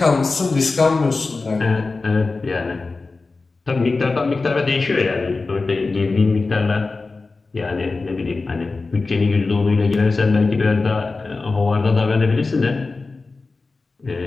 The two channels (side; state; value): right; quieter; 3.8 dB